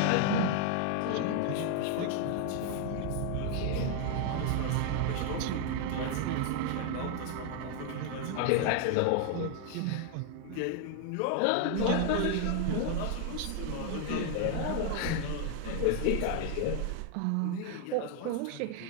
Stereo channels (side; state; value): both; different; correlation 0.00